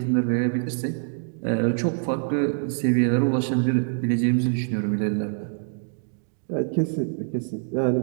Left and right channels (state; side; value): silent; left; digital silence